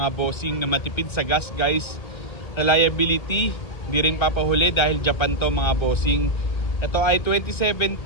bossing na matipid sa gas guys. Reliability, hindi rin papahuli dahil Japan to mga bossing. Ito ay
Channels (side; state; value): right; late; 1.8 ms